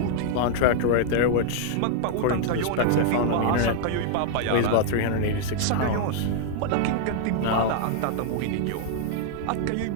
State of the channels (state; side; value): different; both; correlation -0.01